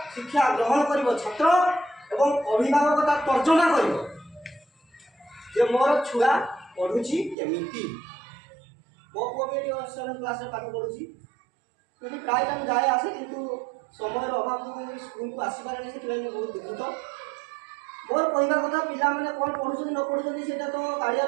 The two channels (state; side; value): drops out; left; at 7.4 s